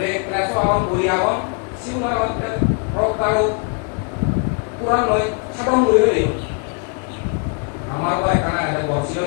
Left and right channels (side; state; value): right; quieter; 38.9 dB